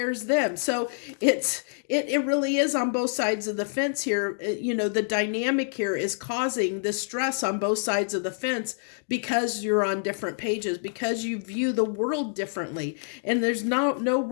them. So it really is on both sides of the fence here. The dynamic here is causing the stress on both sides of the fence because you're on different pages, because you view the world differently. And there's no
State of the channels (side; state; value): right; silent; digital silence